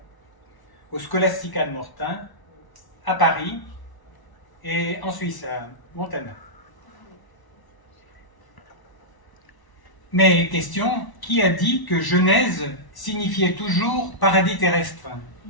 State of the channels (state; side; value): late; right; 1.0 ms